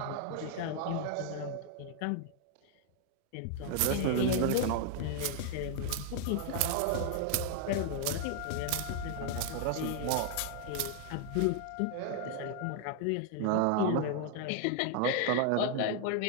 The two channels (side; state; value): both; different; correlation 0.00